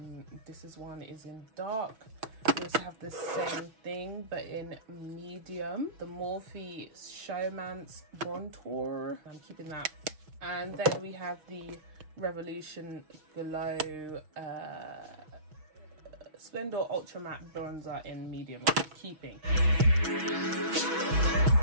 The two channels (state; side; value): late; left; 6.2 ms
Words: this one is in dark. We also have the same thing but in medium, the Morphe Showman's Contour. I'm keeping that. And then we have the Revolution Glow Splendor Ultra Matte Bronzer in medium, which I'm keeping.